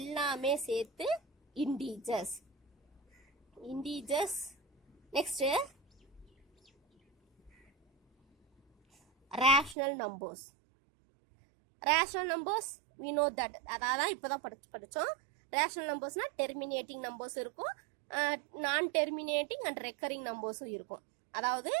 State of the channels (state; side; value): drops out; left; at 9.8 s